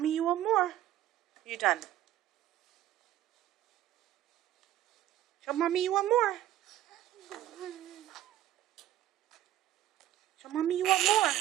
you want more. You done? Show Mommy you want more. Show Mommy you want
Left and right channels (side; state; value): left; quieter; 13.0 dB